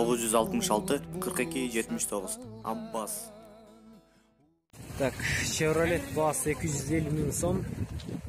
42 79. Аббас. Так, Chevrolet Boss 250 миң сом.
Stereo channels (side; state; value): both; identical; correlation 1.00